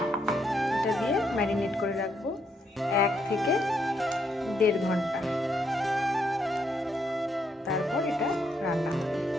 এটা দিয়ে ম্যারিনেট করে রাখবো 1 থেকে 1.5 ঘন্টা। তারপর এটা রান্না হবে।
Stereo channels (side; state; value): both; normal; correlation 0.76